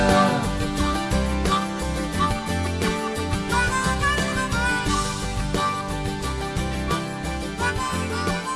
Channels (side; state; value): both; identical; correlation 1.00